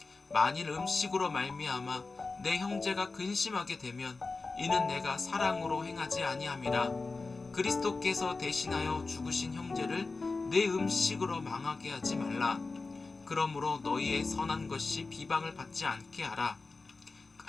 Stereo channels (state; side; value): quieter; right; 3.9 dB